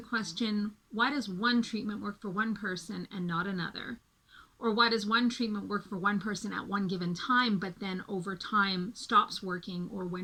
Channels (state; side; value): identical; both; correlation 1.00